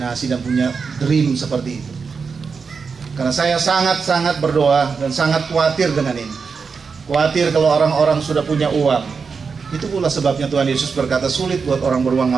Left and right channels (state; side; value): quieter; left; 5.4 dB